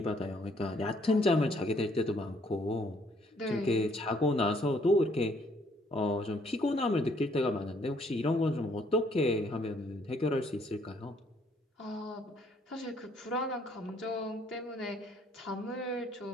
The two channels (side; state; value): both; normal; correlation 0.66